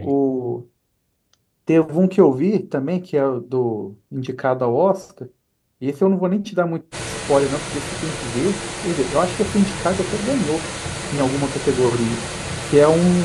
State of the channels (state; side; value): identical; both; correlation 1.00